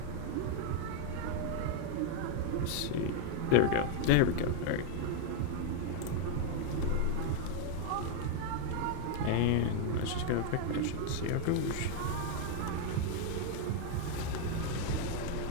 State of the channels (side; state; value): both; different; correlation 0.00